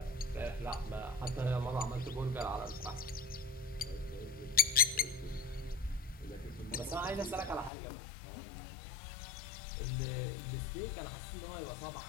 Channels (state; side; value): drops out; right; at 7.7 s